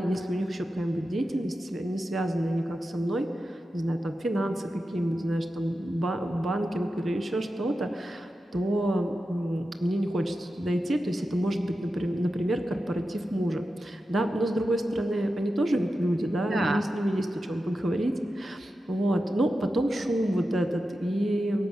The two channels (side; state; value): both; normal; correlation 0.91